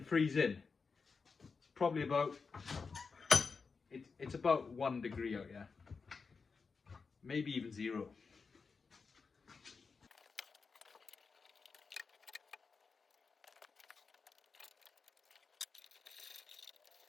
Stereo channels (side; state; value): right; quieter; 5.0 dB